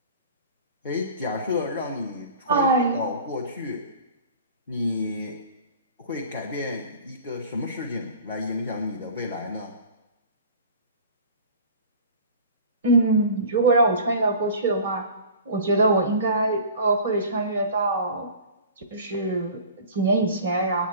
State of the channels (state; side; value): inverted; both; correlation -0.42